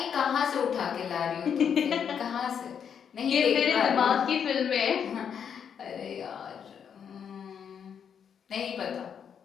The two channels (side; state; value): right; quieter; 7.7 dB